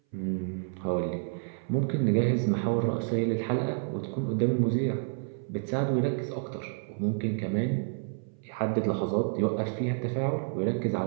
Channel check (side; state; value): left; silent; 58 dB below the other